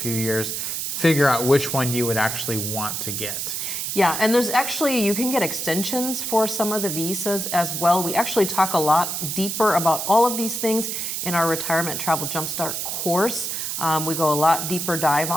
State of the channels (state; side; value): noise; right; hiss, 3 dB below the sound